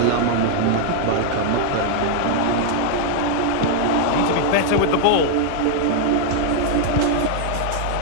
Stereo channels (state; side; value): different; both; correlation 0.00